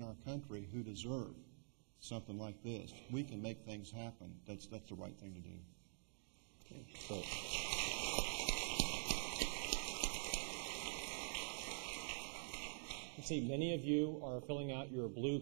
our country who deserve something like this, we can make things happen. That's the right thing to do. Okay. So. I see many of you are filling out your blue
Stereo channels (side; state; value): left; silent; digital silence